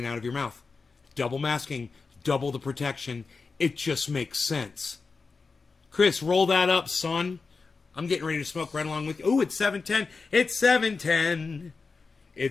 out of your mouth. Double masking, double the protection. It just makes sense. Chris, roll that up, son. I'm getting ready to smoke right along with you. Ooh, it's 7:10. It's 7:10.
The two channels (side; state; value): right; quieter; 4.5 dB